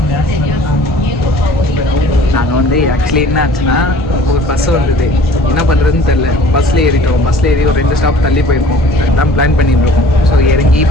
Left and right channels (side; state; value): both; normal; correlation 0.49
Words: நாங்கள் வந்து ஆக்சுவலி என்ன ஆச்சுன்னா ஒரு பஸ் வந்தது, என்ன பண்ணுறதுன்னு தெரில. பஸ்ஸில் ஏறிட்டோம். பஸ்ஸில் ஏறி ஒரு 2 ஸ்டாப் தள்ளி போயிருக்கோம். அதுதான் பிளான் பண்ணிட்டு இருக்கோம். ஸோ இறங்கி